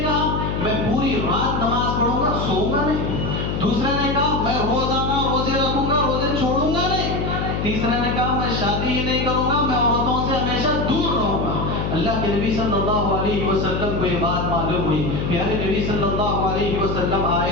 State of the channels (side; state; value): left; noise; hum, 1 dB below the sound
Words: میں پوری رات نماز پڑھوں گا، سوؤں گا نہیں، دوسرے نے کہا میں روزانہ روزے رکھوں گا، روزے چھوڑوں گا نہیں، تیسرے نے کہا میں شادی ہی نہیں کروں گا، میں عورتوں سے ہمیشہ دور رہوں گا۔ اللہ کے نبی صلی اللہ علیہ وسلم کو یہ بات معلوم ہوئی، پیارے نبی صلی اللہ علیہ وسلم